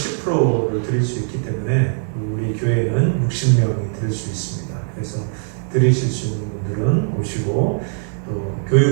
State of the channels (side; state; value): left; silent; digital silence